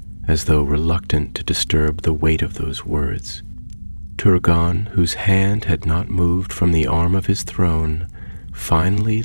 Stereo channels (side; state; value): both; inverted; correlation -1.00